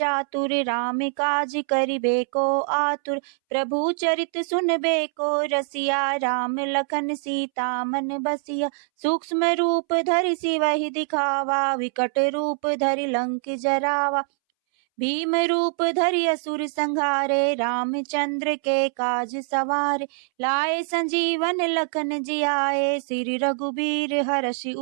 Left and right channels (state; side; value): silent; left; 63 dB below the other